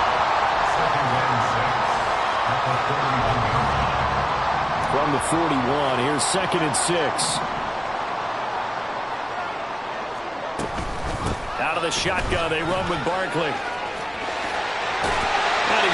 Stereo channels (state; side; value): identical; both; correlation 1.00